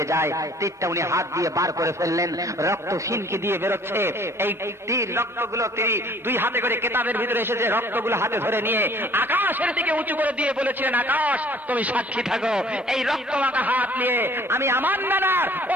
যায়। তীরটা উনি হাত দিয়ে বার করে ফেললেন, রক্ত সিনকি দিয়ে বেরোচ্ছে। এই তীর রক্তগুলো তিনি দুই হাতে করে, কেতাবের ভিতরে এসেছে, রক্তগুলো হাতে ধরে নিয়ে আকাশের দিকে উঁচু করে দিয়ে বলেছিলেন, আকাশ তুমি সাক্ষী থাকো, এই রক্ত মাখা হাত নিয়ে আমি আমার নানার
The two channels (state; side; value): normal; both; correlation 0.55